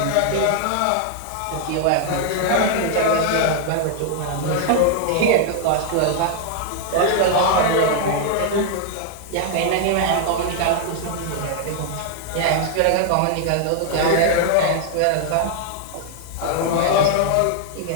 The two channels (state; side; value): different; both; correlation 0.00